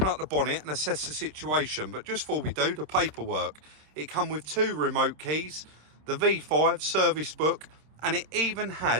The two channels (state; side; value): late; left; 26 ms